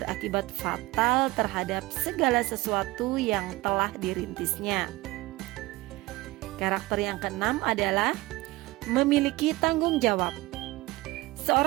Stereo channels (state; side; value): quieter; left; 20.1 dB